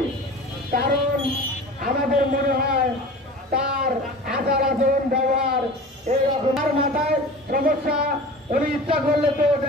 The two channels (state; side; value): normal; both; correlation 0.37